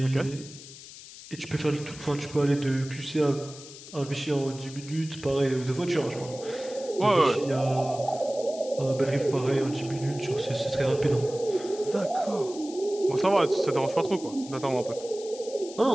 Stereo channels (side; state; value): left; noise; hiss, 16 dB below the sound